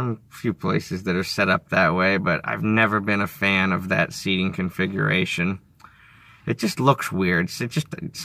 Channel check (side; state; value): both; identical; correlation 1.00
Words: are set up that way, but I've never been a fan of that seating configuration. It just looks weird.